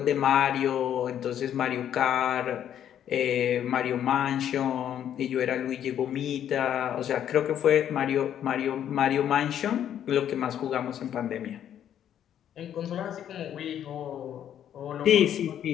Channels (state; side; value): quieter; right; 10.1 dB